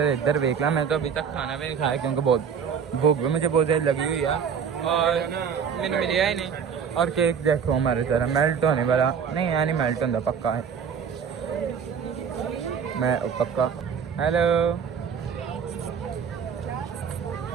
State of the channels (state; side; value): quieter; left; 7.0 dB